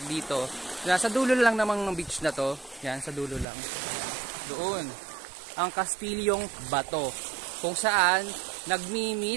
dito. Nasa dulo lang namang ng beach na to. Yan, sa dulo lang. Doon. Ang Kastilyong Bato. Kung saan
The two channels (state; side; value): drops out; left; at 3.5 s